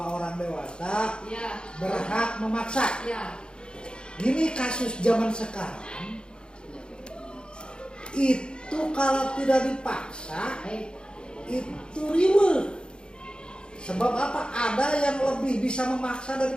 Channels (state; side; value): late; right; 0.051 ms